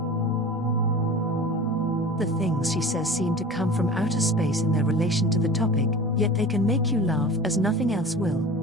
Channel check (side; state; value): both; normal; correlation 0.38